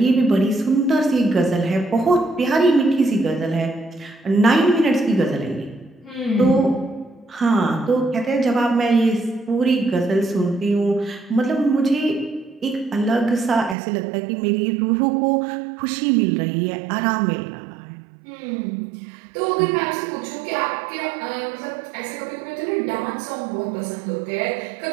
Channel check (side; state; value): left; drops out; at 13.8 s